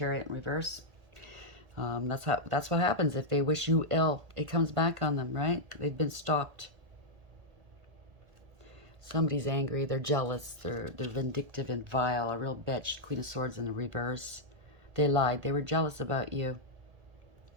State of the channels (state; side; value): late; left; 1.8 ms